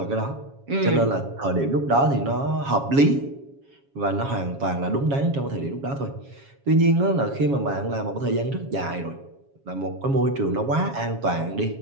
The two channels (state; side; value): late; left; 7.3 ms